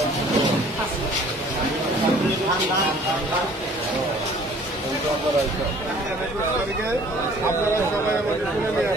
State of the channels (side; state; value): both; normal; correlation 0.53